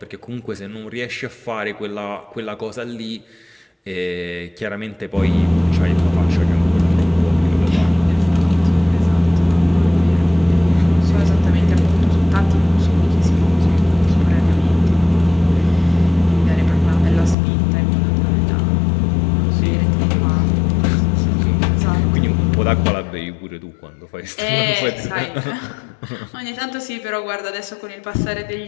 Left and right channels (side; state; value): right; drops out; at 17.4 s